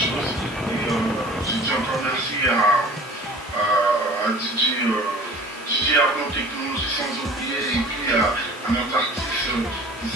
choses. Et je dis encore merci à DJ Arnaud Technologie sans oublier, et puis à notre artiste qui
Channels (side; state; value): both; normal; correlation 0.45